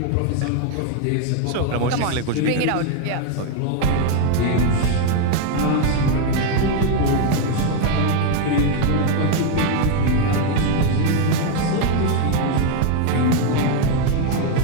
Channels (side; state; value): both; different; correlation 0.01